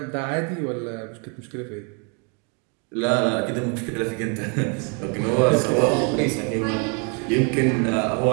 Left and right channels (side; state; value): left; quieter; 37.1 dB